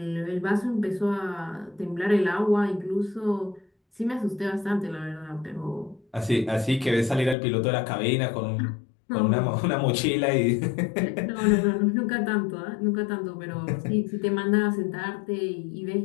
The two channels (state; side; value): drops out; right; at 7.4 s